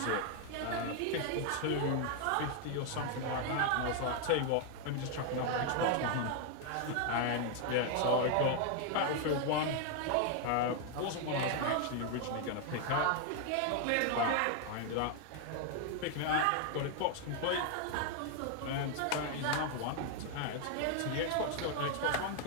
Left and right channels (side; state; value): both; different; correlation 0.00